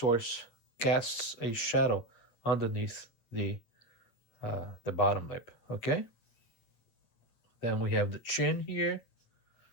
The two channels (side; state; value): right; late; 8.7 ms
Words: casts a shadow underneath the bottom lip. Okay. Then we have the chin here,